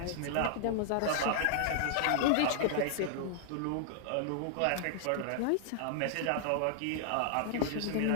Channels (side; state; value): both; different; correlation -0.01